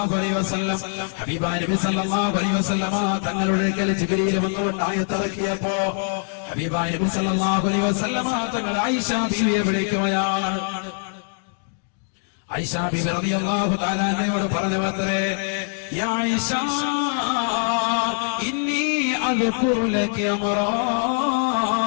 عليه وسلم حبيبا നബി സല്ലല്ലാഹു അലൈഹി വസല്ലമ തങ്ങളുടെ അടുക്കൽ ജിബ്രീൽ വന്നുകൊണ്ട് ആയത്തിറക്കിയപ്പോ ഹബീബായ നബി സല്ലല്ലാഹു അലൈഹി വസല്ലമ തങ്ങൾ ആയിഷ ബീവിയെ വിളിക്കുകയാണ്. ആയിഷ ബീവി റളിയല്ലാഹു തആല അൻഹയോട് പറഞ്ഞത്രേ, യാ ആയിഷ ഇന്നി അദ്കുറു ലക അമറാ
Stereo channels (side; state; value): right; silent; 59 dB below the other